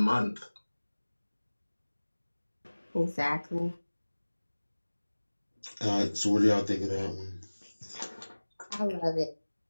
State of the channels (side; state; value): both; inverted; correlation -1.00